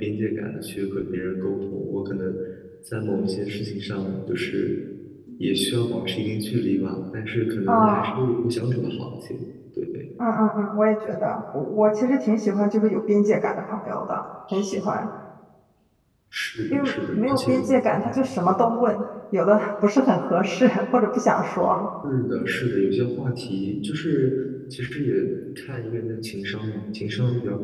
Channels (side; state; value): both; identical; correlation 1.00